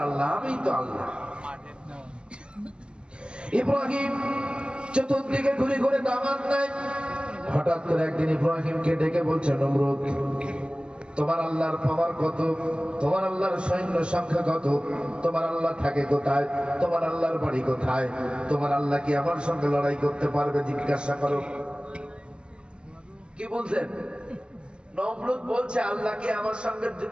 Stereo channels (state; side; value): late; left; 0.051 ms